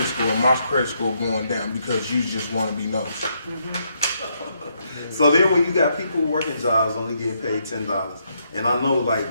score and my credit score going down because you just want to be nosy? So then when you got people working jobs only getting paid $10, and I know like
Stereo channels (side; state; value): both; inverted; correlation -0.76